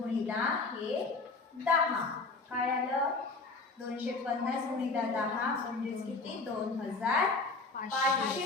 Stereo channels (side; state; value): right; quieter; 3.8 dB